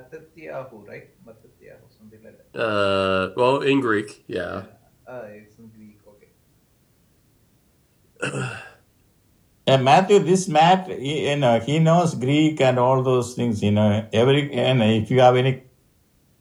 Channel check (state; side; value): identical; both; correlation 1.00